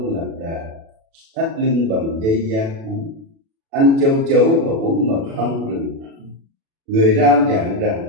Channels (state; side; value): late; left; 36 ms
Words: lạc đà, thắt lưng bằng dây da thú, ăn châu chấu và uống mật ong rừng. Người rao giảng rằng: